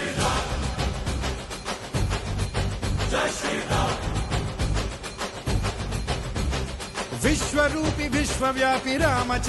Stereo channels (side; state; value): both; identical; correlation 1.00